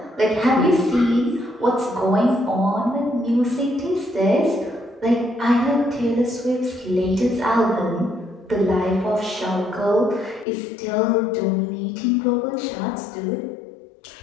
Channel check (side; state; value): right; drops out; at 10.5 s